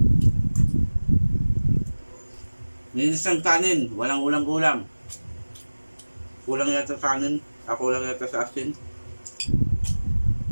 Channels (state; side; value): inverted; both; correlation -1.00